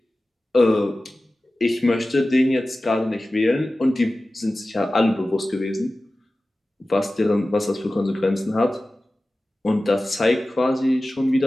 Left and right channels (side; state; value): both; normal; correlation 0.96